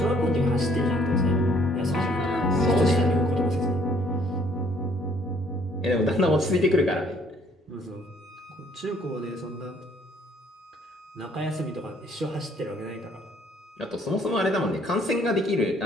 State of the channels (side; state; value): both; normal; correlation 0.63